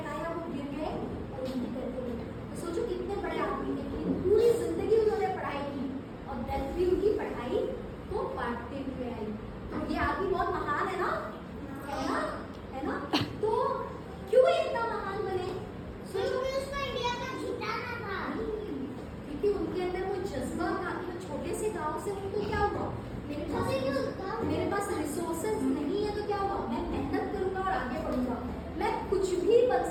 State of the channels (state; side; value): identical; both; correlation 1.00